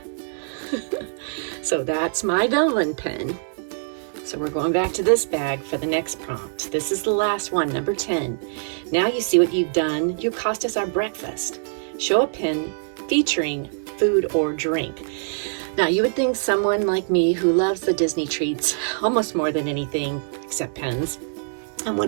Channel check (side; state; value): left; silent; digital silence